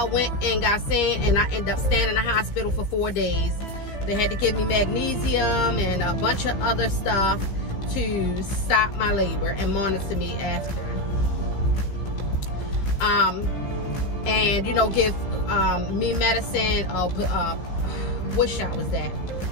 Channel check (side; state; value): right; late; 15 ms